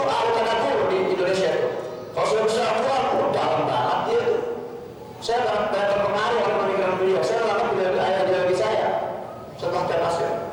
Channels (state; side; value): identical; both; correlation 1.00